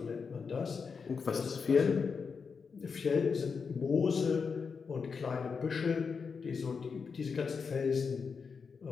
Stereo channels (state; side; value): quieter; right; 5.5 dB